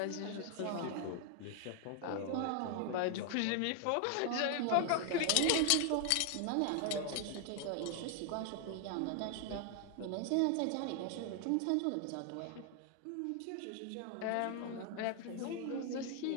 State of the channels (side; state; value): both; different; correlation 0.00